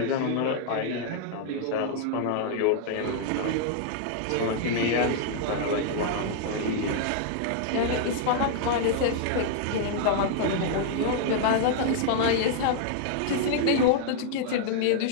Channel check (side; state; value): both; different; correlation -0.01